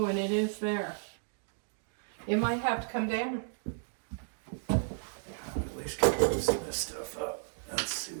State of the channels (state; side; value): silent; left; digital silence